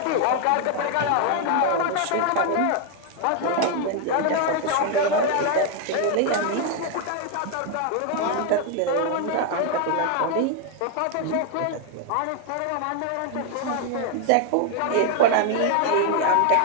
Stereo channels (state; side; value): different; both; correlation 0.01